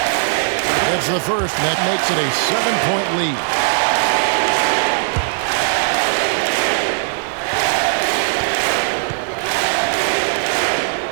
It's the first, and that makes it a 7-point lead.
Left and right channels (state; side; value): silent; left; digital silence